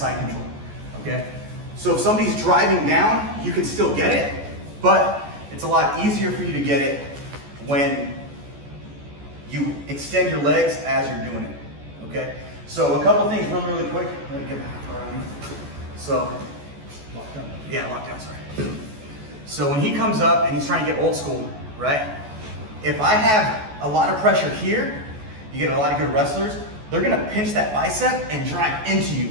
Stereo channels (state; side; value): late; left; 14 ms